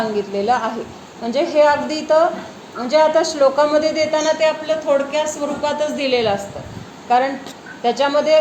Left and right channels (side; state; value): both; identical; correlation 1.00